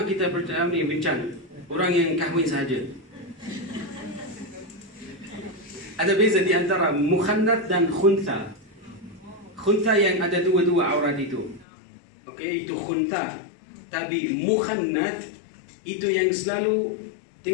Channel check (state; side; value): drops out; right; at 11.7 s